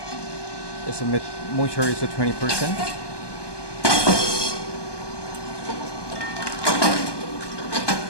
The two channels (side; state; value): right; late; 1.2 ms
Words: Its moisture is at 20%.